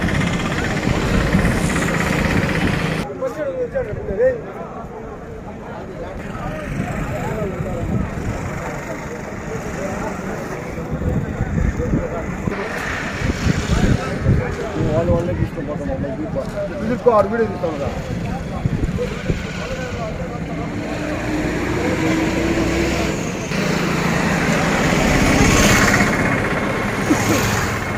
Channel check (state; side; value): identical; both; correlation 1.00